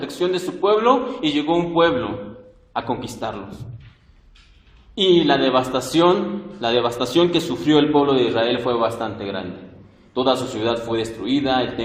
de su pueblo, y llegó un pueblo a conquistarlos. Y la devastación que sufrió el pueblo de Israel fue bastante grande. Toda su ciudad fue destruida, el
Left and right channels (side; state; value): both; identical; correlation 1.00